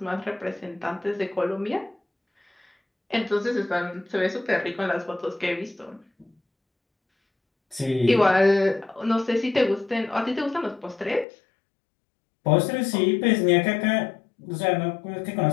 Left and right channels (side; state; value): right; drops out; at 11.2 s